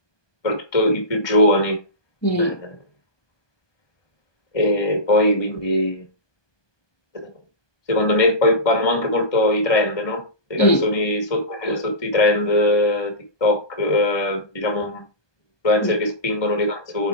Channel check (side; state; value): right; late; 1.2 ms